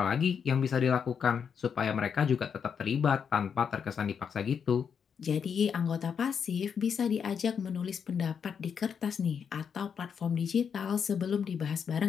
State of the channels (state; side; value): quieter; right; 7.0 dB